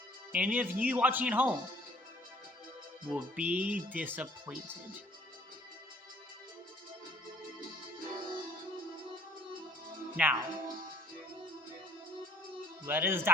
any of you watching at home will be disappointed. Now, let us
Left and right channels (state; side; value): normal; both; correlation 0.57